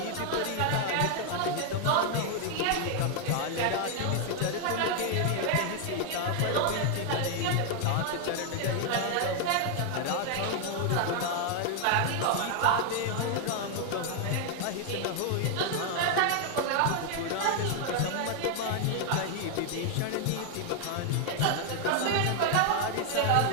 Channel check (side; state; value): both; different; correlation 0.00